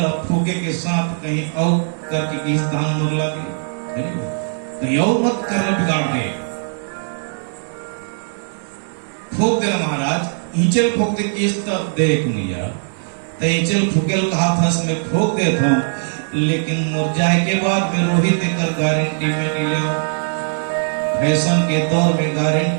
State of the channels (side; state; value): left; silent; 63 dB below the other